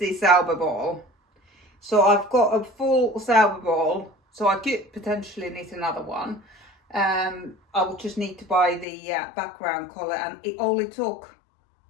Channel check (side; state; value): right; drops out; at 8.8 s